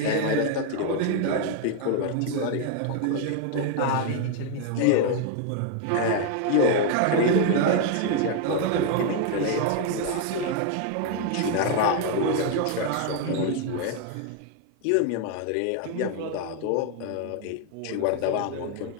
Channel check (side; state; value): both; different; correlation 0.01